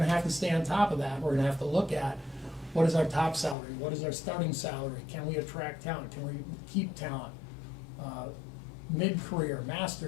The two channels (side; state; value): right; drops out; at 3.6 s